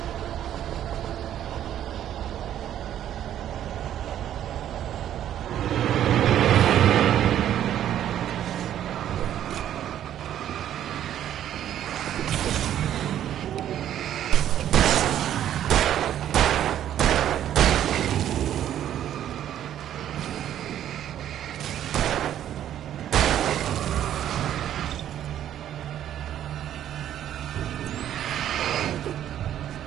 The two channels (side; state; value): left; quieter; 11.0 dB